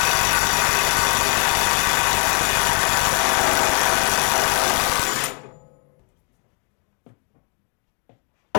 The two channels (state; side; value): quieter; right; 35.9 dB